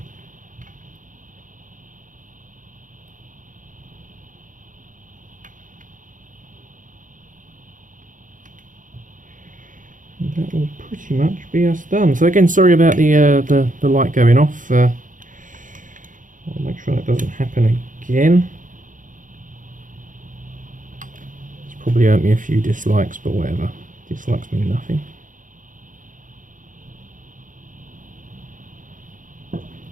that will pretty much be us done. So again, sorry about the light going off. I'll make sure that doesn't happen again. It's probably earned me a few dislikes, but whatever. Dislikes mean nothing.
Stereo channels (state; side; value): late; left; 0.38 ms